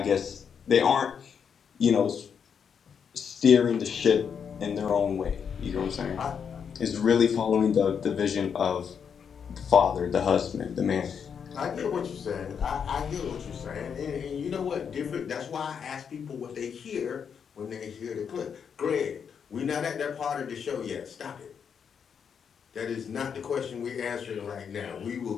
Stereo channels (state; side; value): quieter; right; 7.1 dB